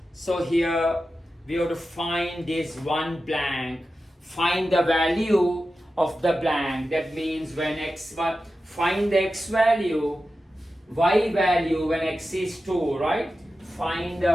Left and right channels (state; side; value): normal; both; correlation 0.92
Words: So here we have to find this one blank, find the value of the blank. That means when x, find the x value, y value when x is 2, right? Find